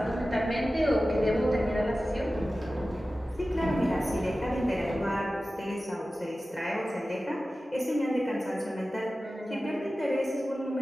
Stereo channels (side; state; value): both; normal; correlation 0.95